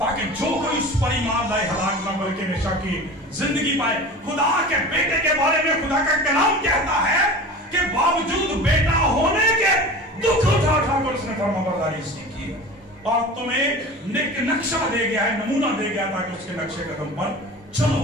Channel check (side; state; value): both; normal; correlation 0.35